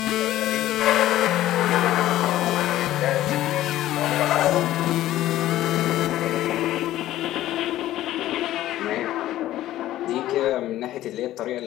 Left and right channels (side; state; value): right; quieter; 14.2 dB